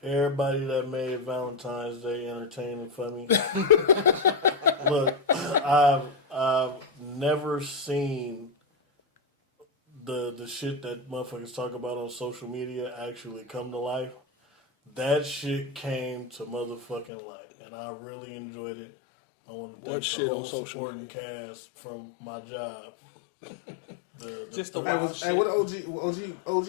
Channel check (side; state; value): right; drops out; at 17.1 s